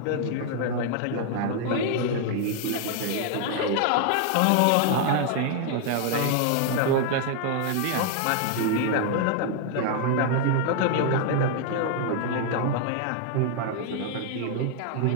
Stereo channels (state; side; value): different; both; correlation 0.00